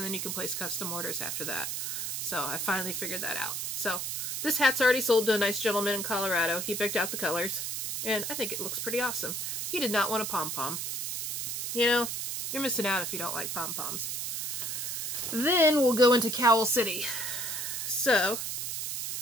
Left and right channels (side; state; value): right; noise; hiss, 3 dB below the sound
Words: then you can place custom orders after that. So I finally figured that out. So this hat's already sold to a nice gentleman in Colorado. He picked out the colors, and I think it looks pretty awesome. He did not want a pom-pom. You know, you're missing out if you don't like pom-poms. Then we'll go into Cowl City. So